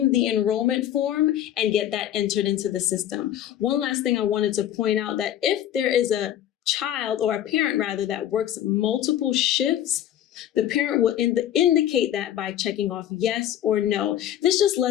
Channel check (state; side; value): quieter; right; 11.4 dB